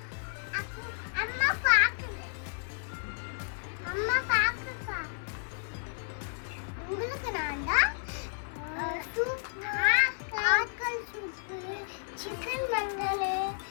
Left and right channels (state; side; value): silent; right; 56 dB below the other